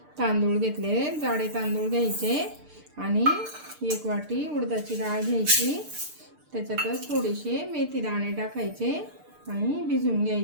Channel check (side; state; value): left; late; 6.7 ms